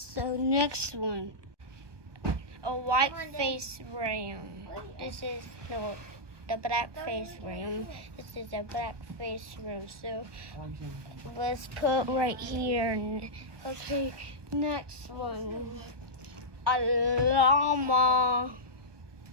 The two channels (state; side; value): late; left; 1.2 ms